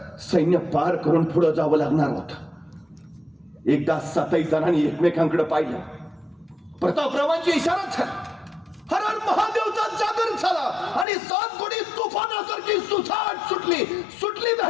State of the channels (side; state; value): right; drops out; at 11.1 s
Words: सैन्य पार करून पुढे जावं लागणार होतं. एकदा 7 जणांनी एकमेकांकडे पाहिलं. प्रतापरावांची इशारा झाला, हर हर महादेवचा जागर झाला आणि 7 घोडी तुफानासारखी सुसाट सुटली